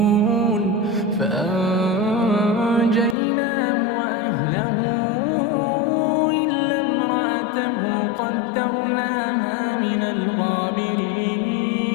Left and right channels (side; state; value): right; drops out; at 3.2 s